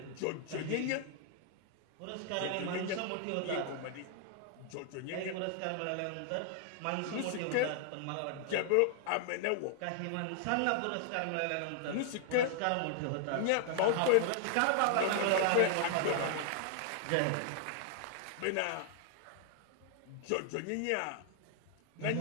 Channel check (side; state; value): both; different; correlation 0.00